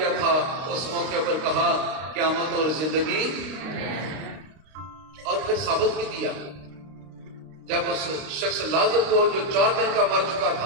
تھا اس موقع پر کہا قیامت اور زندگی، اور پھر ثابت بھی کیا جب اس شخص لازر کو جو 4 دن کا مر چکا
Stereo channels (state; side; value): late; left; 32 ms